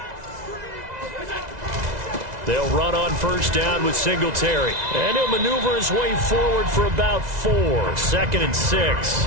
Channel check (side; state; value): left; late; 2.0 ms